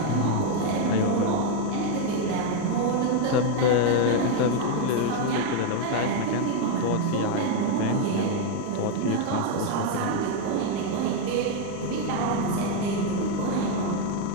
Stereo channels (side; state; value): both; different; correlation 0.01